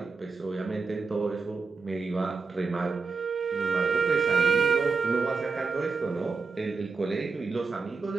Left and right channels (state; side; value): quieter; left; 4.6 dB